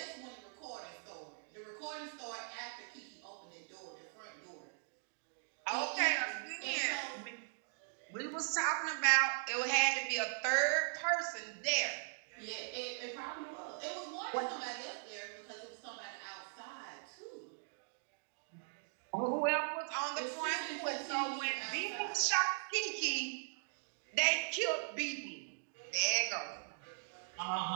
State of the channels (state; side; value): silent; left; digital silence